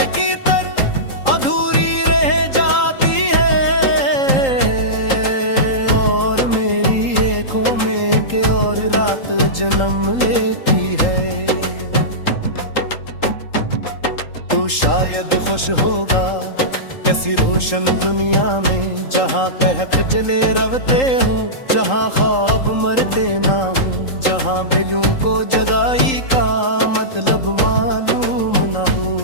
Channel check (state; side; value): late; right; 3.8 ms